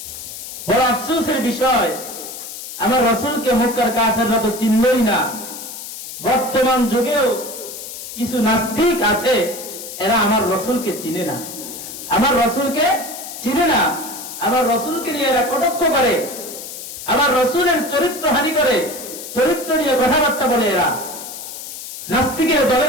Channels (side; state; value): left; noise; hiss, 10 dB below the sound